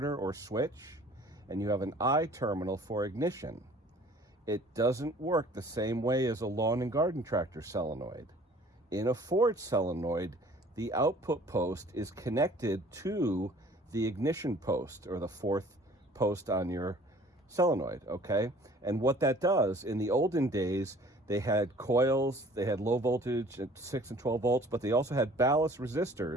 or switch, and you have an I terminal for ignition. It doesn't work the same way as a lawn and garden tractor solenoid. In a Ford solenoid, the output post is connected to the ignition post, or the 4th post on your solenoid, okay? And what that does, in the olden days, they had coils, they had low voltage at 6 and 12 volts, but they also had ballast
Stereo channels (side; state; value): both; normal; correlation 0.52